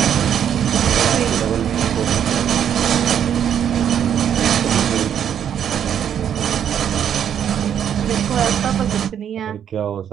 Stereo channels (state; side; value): quieter; left; 9.1 dB